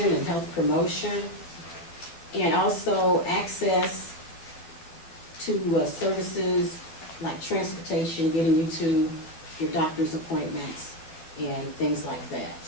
and health promotion, and also access to services like transportation, getting you to your doctor's appointments and things like that.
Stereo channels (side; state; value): right; late; 12 ms